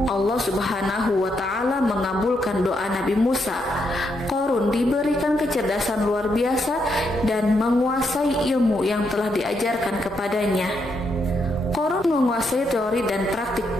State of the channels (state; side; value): normal; both; correlation 0.79